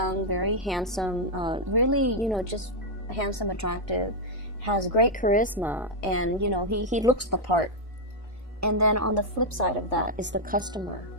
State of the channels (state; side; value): normal; both; correlation -0.02